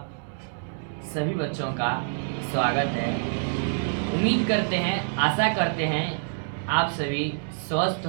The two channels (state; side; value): silent; left; digital silence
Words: सभी बच्चों का स्वागत है। उम्मीद करते हैं, आशा करते हैं आप सभी स्वस्थ